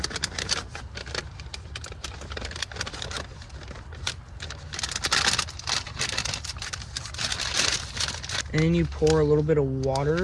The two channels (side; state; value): both; identical; correlation 1.00